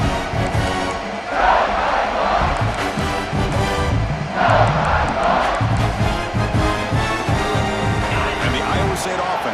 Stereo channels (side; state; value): both; identical; correlation 1.00